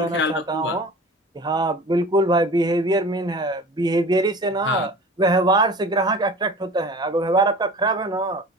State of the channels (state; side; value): normal; both; correlation 0.39